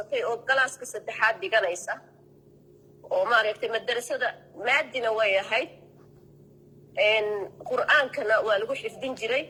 oo galaaska saddexaad dhiganaysa oo maaragtay madrasada maadina way ahayd qur'aankana waa lagu xifdin jiray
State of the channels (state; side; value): identical; both; correlation 1.00